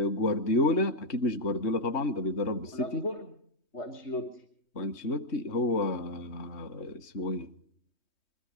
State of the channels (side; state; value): right; late; 3.2 ms